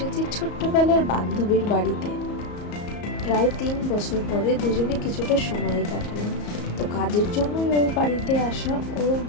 ছোট্টবেলার বান্ধবীর বাড়িতে। প্রায় 3 বছর পরে দুজনে কিছুটা সময় কাটালাম। তো কাজের জন্যই ওর বাড়িতে আসা। ওর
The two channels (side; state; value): right; late; 34 ms